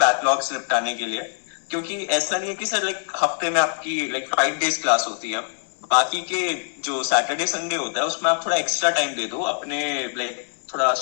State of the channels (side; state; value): right; silent; 63 dB below the other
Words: निपटाने के लिए। क्योंकि ऐसा नहीं है कि सर लाइक हफ्ते में आपकी लाइक 5 days क्लास होती है, बाकी के जो सैटरडे संडे होता है उसमें आप थोड़ा एक्स्ट्रा टाइम दे दो अपने लाइक थोड़ा